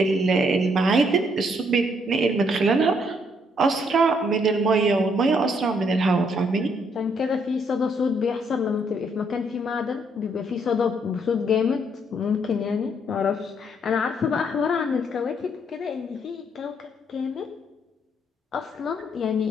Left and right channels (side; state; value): both; normal; correlation 0.71